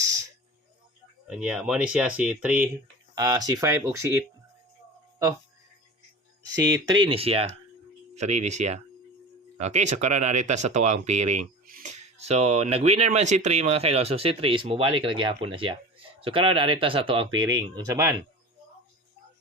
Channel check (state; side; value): normal; both; correlation 0.33